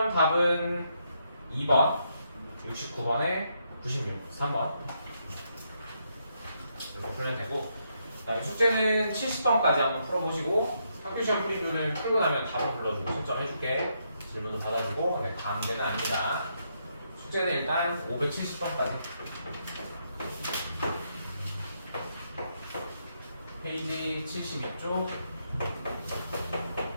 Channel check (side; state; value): both; inverted; correlation -0.78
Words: 답은 2번, 69번에 96, 3번. 이렇게 풀면 되고, 그다음에 숙제는 70번까지 한번 풀어보시고, 학교시험 풀이표는 풀고 나면 답을 불러주고 신청해줄게. 질문도 받아주고, 네, 강제는 아니다. 숙제는 일단 570번까지. 페이지 72쪽.